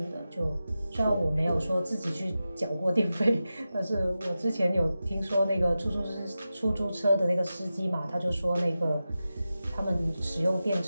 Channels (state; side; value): inverted; both; correlation -0.93